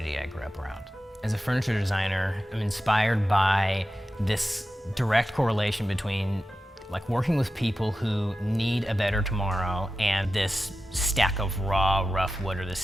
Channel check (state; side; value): normal; both; correlation 0.93